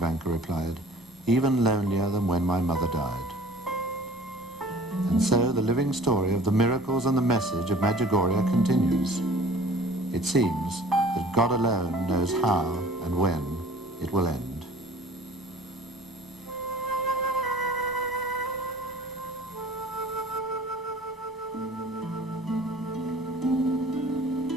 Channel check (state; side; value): normal; both; correlation 0.48